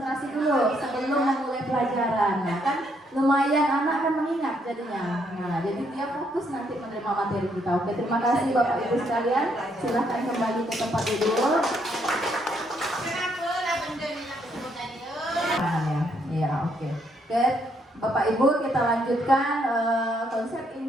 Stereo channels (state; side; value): normal; both; correlation 0.73